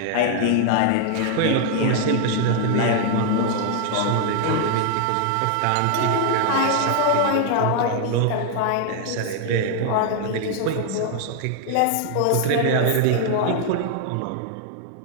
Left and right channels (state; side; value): different; both; correlation 0.00